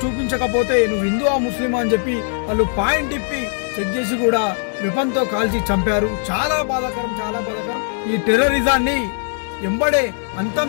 చూపించకపోతే నువ్వు హిందువా ముస్లిమా అని చెప్పి వాళ్ళు పాయింట్ ఇప్పి చెక్ చేసి కూడా వెపన్ తో కాల్చి చంపారు. చాలా బాధాకరం, చాలా బాధాకరం. ఈ టెర్రరిజాన్ని ఎంబడే అంతం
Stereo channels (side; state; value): right; silent; 55 dB below the other